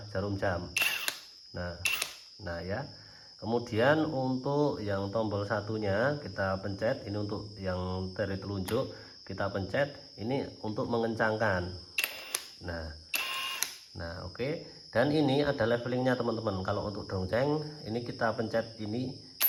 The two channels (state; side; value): identical; both; correlation 1.00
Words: jarum jam. Nah ya. Kemudian untuk yang tombol satunya kita pencet, ini untuk yang dari telunjuk kita pencet, ini untuk mengencangkan. Nah oke. Dan ini ada levelingnya teman-teman. Kalau untuk dongceng ini kita pencet ini